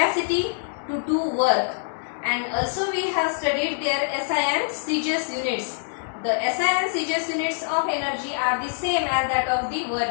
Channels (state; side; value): silent; right; digital silence